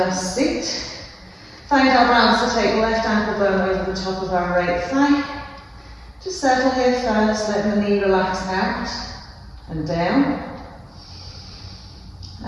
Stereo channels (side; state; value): both; identical; correlation 1.00